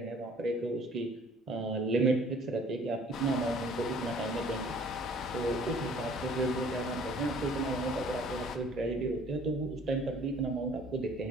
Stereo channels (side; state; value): both; normal; correlation 0.54